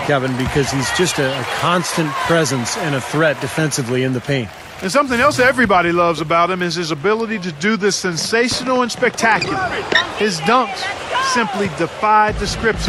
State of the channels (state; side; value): identical; both; correlation 1.00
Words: Kevin, because he's just a constant presence and a threat defensively in the paint. And something else everybody loves about him is his ability to do the sensational and spectacular. His dunks simply defy